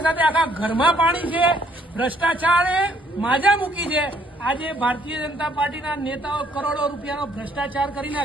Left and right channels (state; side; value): normal; both; correlation 0.65